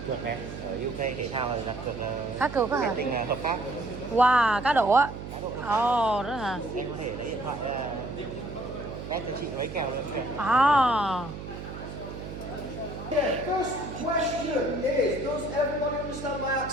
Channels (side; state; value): right; noise; hum, 9 dB below the sound